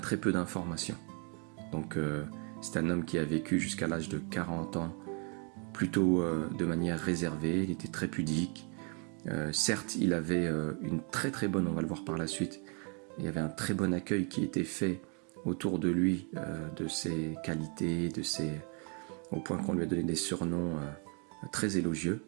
peu d'informations. Donc c'est un homme qui a vécu jusqu'à l'âge de 40 ans, plutôt de manière réservée, il était très pudique. Certes, il avait une très très bonne, on va le voir par la suite, il y avait un très bon accueil qui était fait autour de lui, de ses qualités, au point qu'on lui a donné des surnoms très élogieux.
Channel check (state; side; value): quieter; left; 35.9 dB